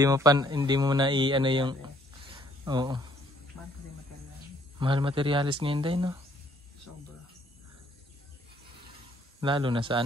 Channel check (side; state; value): both; normal; correlation 0.64